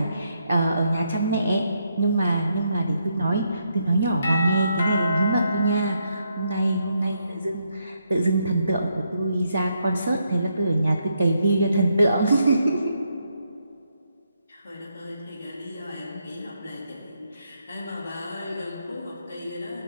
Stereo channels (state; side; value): inverted; both; correlation -0.78